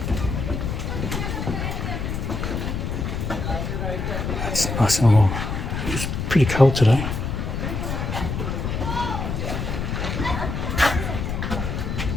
It's nice and warm. It's pretty cold today.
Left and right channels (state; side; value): noise; left; rumble, 2 dB below the sound